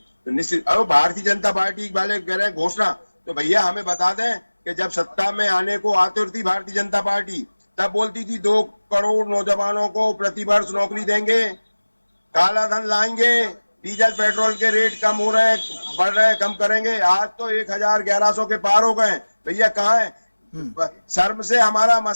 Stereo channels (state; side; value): inverted; both; correlation -1.00